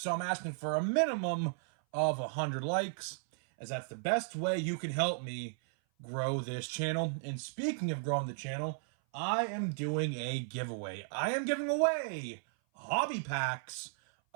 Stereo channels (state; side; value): silent; left; 55 dB below the other